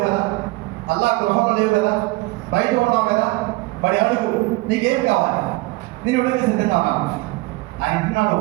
కదా, అల్లాహ్ గృహంలో లేవు కదా, బయట ఉన్నావు కదా, మరి అడుగు నీకేం కావాలి, నేను ఇవ్వడానికి సిద్ధంగా ఉన్నాను. ఆయన అంటున్నాడు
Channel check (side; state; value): left; quieter; 21.6 dB